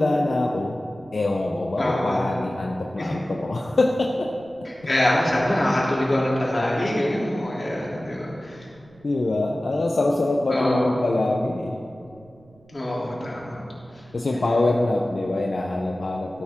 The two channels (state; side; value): noise; right; rumble, 29 dB below the sound